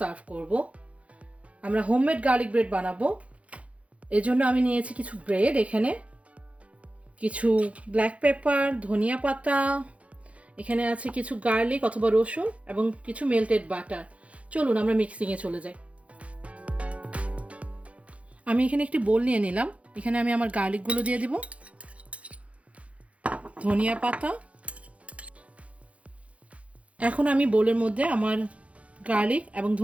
করব। আমরা হোমমেড গার্লিক ব্রেড বানাবো। এর জন্য আমি নিয়েছি কিছু ব্রেড, এখানে কিছু ব্ল্যাক পেপার, ধনিয়া পাতা, এখানে আছে কিছু গার্লিক অথবা রসুন এবং কিছু মেল্টেড বাটার। চলুন আমরা মিক্সিংয়ে চলে যাই। আমি এখানে একটি বোল নিয়ে নিলাম। এখানে আমি আমার গার্লিকগুলো দিয়ে দিব, ধনিয়া পাতা। এখন আমি বোলের মধ্যে আমার গার্লিক এবং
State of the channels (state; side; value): late; left; 0.064 ms